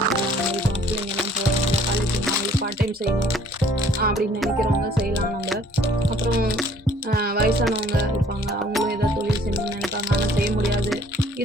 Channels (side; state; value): both; normal; correlation 0.57